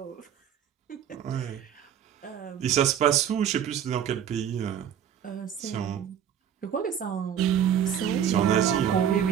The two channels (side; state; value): left; quieter; 9.1 dB